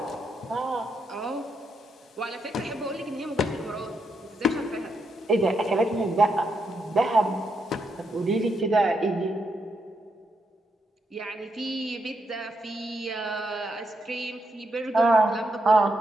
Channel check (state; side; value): normal; both; correlation 0.80